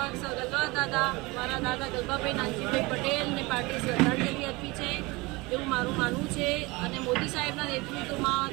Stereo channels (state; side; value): quieter; left; 23.7 dB